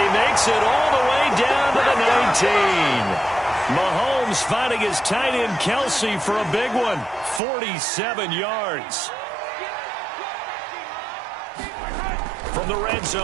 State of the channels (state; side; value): drops out; left; at 7.4 s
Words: makes it all the way down to the 19. Mahomes finding his tight end Kelsey for a big one. 47 yards. From the red